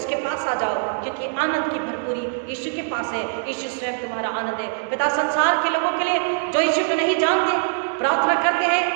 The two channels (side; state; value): left; silent; 64 dB below the other